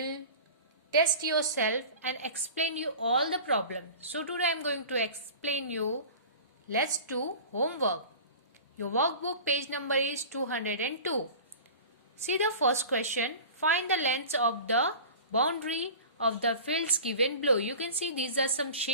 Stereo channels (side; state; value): both; inverted; correlation -0.38